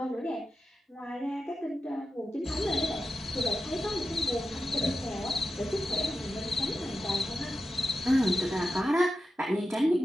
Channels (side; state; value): both; normal; correlation 0.91